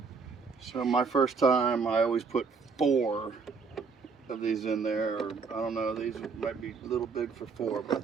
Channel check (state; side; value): quieter; left; 5.0 dB